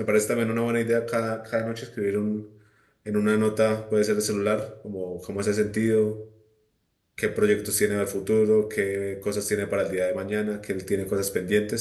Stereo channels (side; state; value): both; identical; correlation 1.00